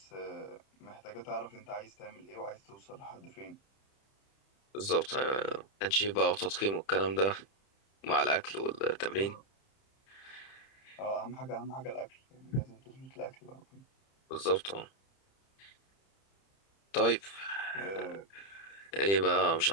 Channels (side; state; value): right; late; 30 ms